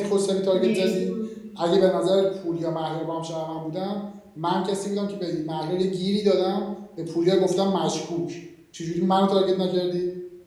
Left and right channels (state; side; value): identical; both; correlation 1.00